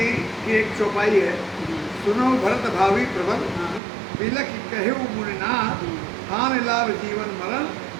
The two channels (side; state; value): left; drops out; at 3.8 s